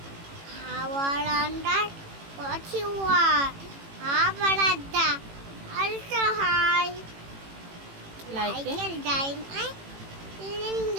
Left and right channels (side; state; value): left; late; 18 ms